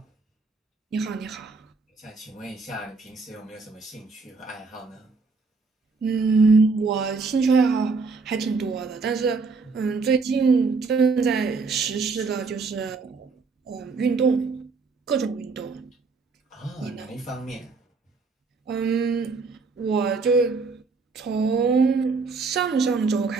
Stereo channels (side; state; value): left; quieter; 4.3 dB